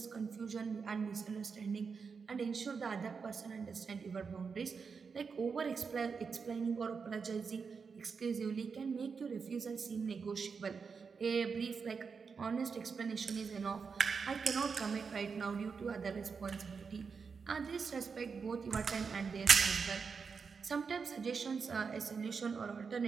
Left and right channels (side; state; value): left; quieter; 5.5 dB